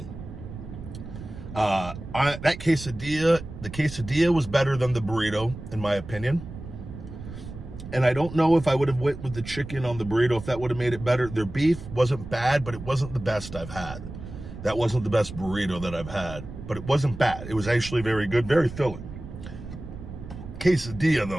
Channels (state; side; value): noise; right; rumble, 12 dB below the sound